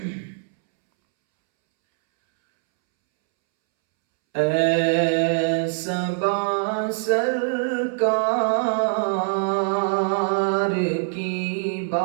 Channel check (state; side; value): silent; left; 64 dB below the other